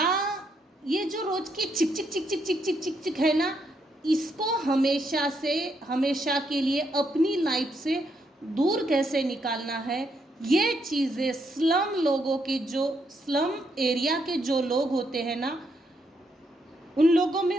ये जो रोज की चिक चिक चिक चिक चिक चिक चिक चिक है ना, इसको हमेशा के लिए अपनी लाइफ से दूर कैसे निकालना है, ये चीज़ें स्लम एरिया के जो लोग होते हैं ना, उन लोगों में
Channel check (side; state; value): both; normal; correlation 0.77